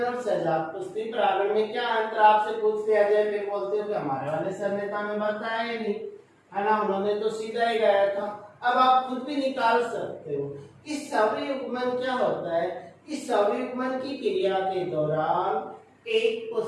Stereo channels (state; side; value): identical; both; correlation 1.00